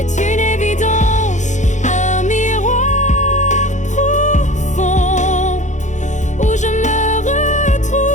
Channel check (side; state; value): right; late; 0.35 ms